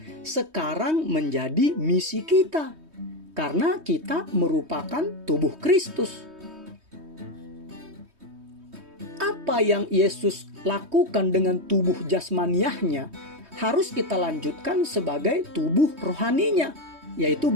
sekarang menjadi misi kita, karena kita merupakan tubuh Kristus. Apa yang Yesus lakukan dengan tubuh jasmaniahnya harus kita lanjutkan sebagai tubuh rohaninya, yaitu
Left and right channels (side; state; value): left; late; 3.2 ms